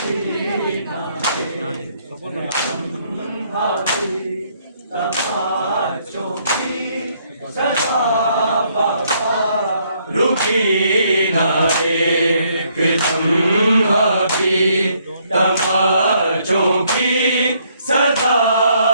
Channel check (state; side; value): inverted; both; correlation -0.69